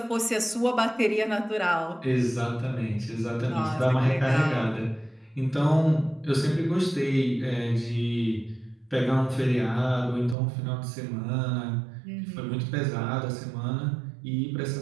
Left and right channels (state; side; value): drops out; left; at 10.4 s